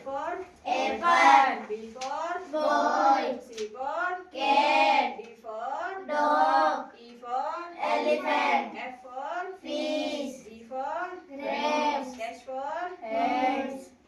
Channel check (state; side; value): identical; both; correlation 1.00